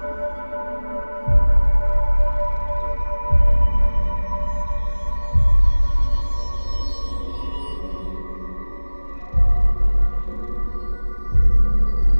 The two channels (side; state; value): both; inverted; correlation -1.00